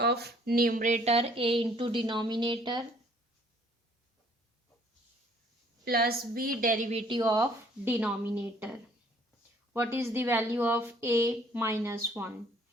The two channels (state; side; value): normal; both; correlation 0.60